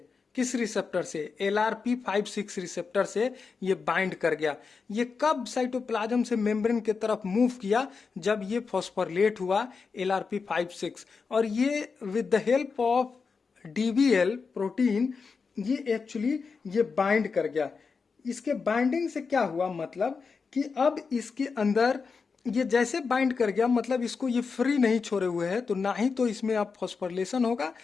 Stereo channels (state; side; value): quieter; right; 5.1 dB